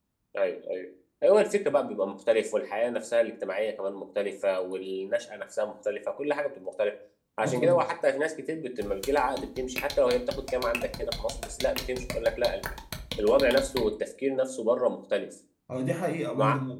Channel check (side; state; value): both; identical; correlation 1.00